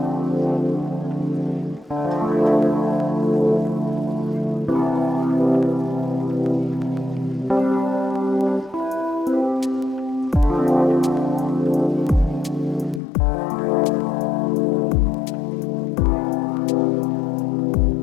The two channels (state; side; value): drops out; right; at 13.0 s